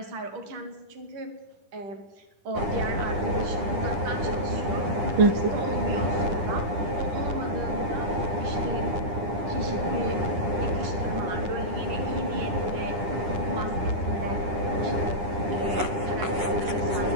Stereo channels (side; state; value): left; late; 10 ms